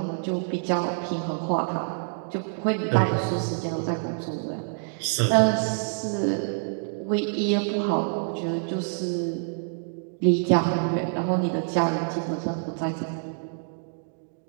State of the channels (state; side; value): silent; left; 60 dB below the other